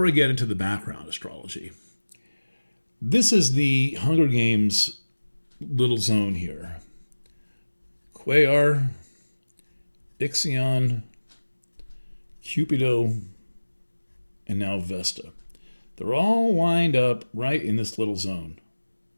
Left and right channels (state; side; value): inverted; both; correlation -1.00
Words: I get into the background astrology, this is the Hunger Games little zone here. Quaoar, Ixion, Cupido, and now Vesta. They're all lined up right in this little zone.